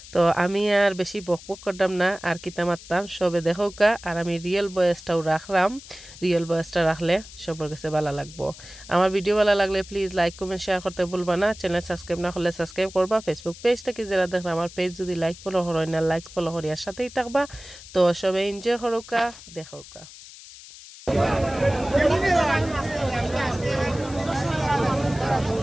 তো আমি আর বেশি বকবক করতাম না, আর কিতা মারতাম সবে দেখোকা। আর আমি রিয়েল ভয়েসটাও রাখলাম, রিয়েল ভয়েসটা রাখলে সবার কাছে ভালো লাগবো। আমার ভিডিও ভালো লাগলে প্লিজ লাইক কমেন্ট শেয়ার করতে ভুলবা না। চ্যানেল সাবস্ক্রাইব না করলে সাবস্ক্রাইব করবা। ফেসবুক পেজ থেকে যারা দেখেন আমার পেজ যদি লাইক ফলো হয় না, লাইক ফলো করিয়ার সাথেই থাকবা। তো সবাই এনজয় করোকা, দেখোকা।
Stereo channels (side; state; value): left; noise; hiss, 17 dB below the sound